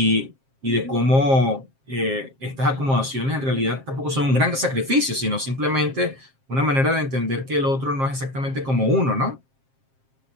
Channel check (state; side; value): late; left; 7.5 ms